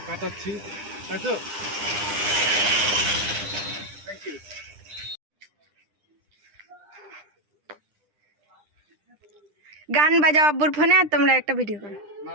কাটাচ্ছি, তাই তো? Thank you. গান বাজাও আব্বুর ফোনে, আর তোমরা একটা ভিডিও করো। না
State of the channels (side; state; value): left; late; 9.9 ms